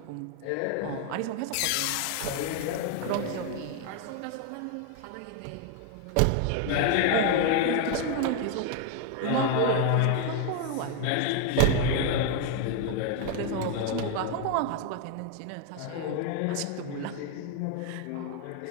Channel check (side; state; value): both; different; correlation 0.01